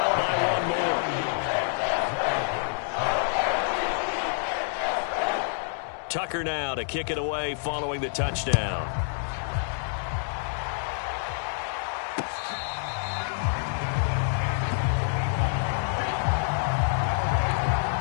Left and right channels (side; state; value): right; silent; digital silence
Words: by 1 more. Tucker now to kick it away following the touchdown.